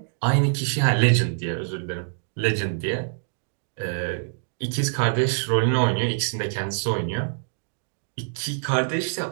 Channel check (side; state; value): left; silent; digital silence